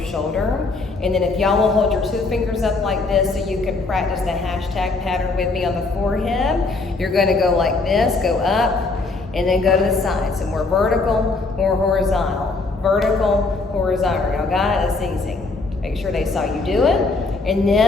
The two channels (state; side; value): quieter; right; 3.6 dB